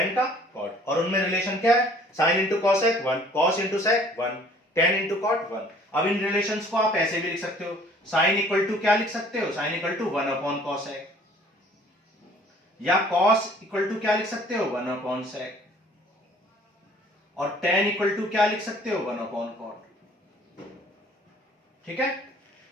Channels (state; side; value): normal; both; correlation 0.55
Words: का कॉट, और उनमें रिलेशन क्या है, sine into cosec 1, cos into sec 1, tan into cot 1। अब इन रिलेशंस को आप ऐसे भी लिख सकते हो, साइन इक्वल टू क्या लिख सकते हो, sine equal to 1 upon cosec, या कॉस इक्वल टू क्या लिख सकते हो 1 अपॉन सेक, और tan इक्वल टू क्या लिख सकते हो 1 अपॉन कॉट। ठीक है,